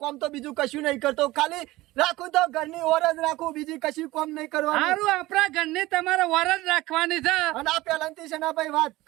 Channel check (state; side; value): quieter; left; 18.6 dB